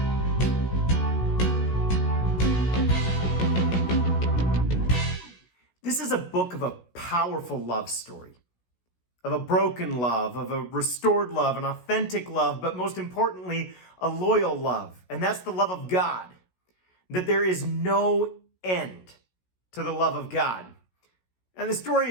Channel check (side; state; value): right; late; 16 ms